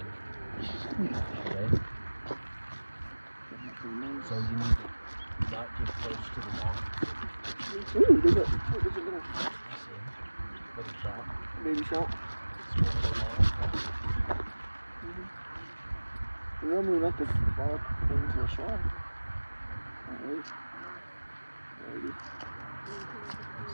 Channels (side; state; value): both; inverted; correlation -1.00